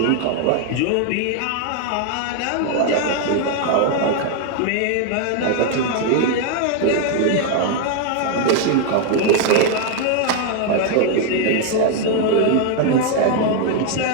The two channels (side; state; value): both; different; correlation 0.00